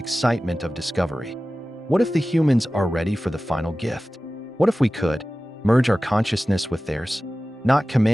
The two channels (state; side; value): normal; both; correlation 0.96